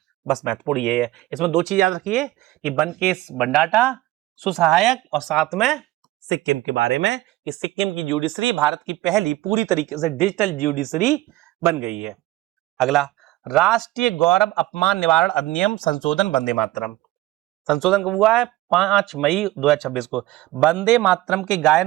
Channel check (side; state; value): left; quieter; 17.1 dB